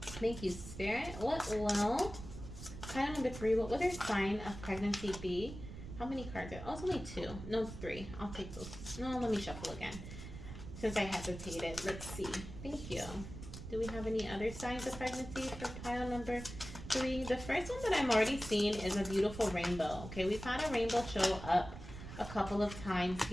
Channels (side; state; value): right; noise; rumble, 11 dB below the sound